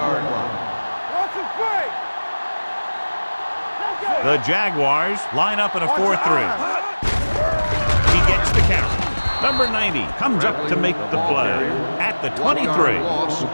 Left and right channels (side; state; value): both; inverted; correlation -1.00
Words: line. Watch him play. The Jaguars line up in a 4-3. He gets the count. Number 90 comes up to make the play at the 23. The